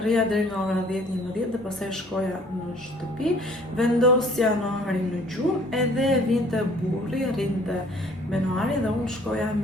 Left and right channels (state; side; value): normal; both; correlation 0.55